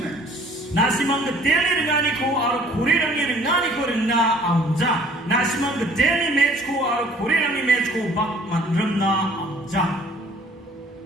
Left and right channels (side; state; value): both; normal; correlation 0.55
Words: Nasimang gedeli ringani ko aru kurirang ni ringani ko ringna amja. Nasimang gedeli match ko aru kurirang ni match ko bak mandrem na amja.